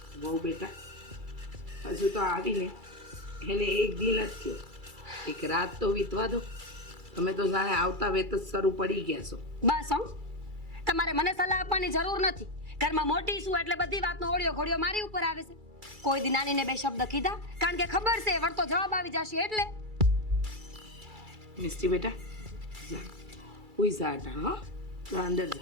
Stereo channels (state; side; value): late; left; 2.3 ms